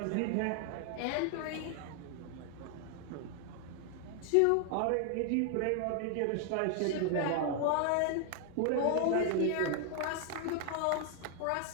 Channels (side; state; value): both; different; correlation 0.00